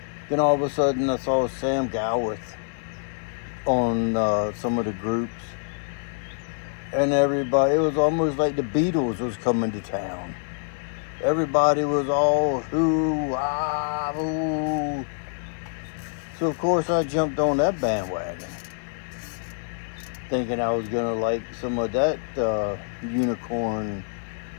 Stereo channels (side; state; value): right; silent; 61 dB below the other